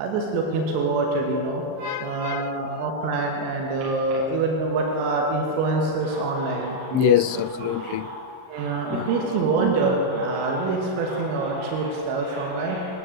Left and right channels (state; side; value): late; left; 38 ms